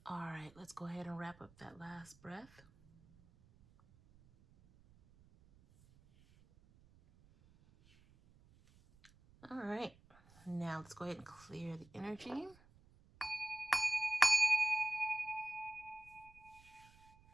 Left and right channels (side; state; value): right; noise; rumble, 26 dB below the sound